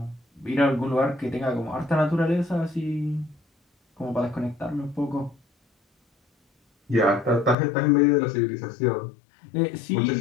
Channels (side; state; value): right; drops out; at 7.6 s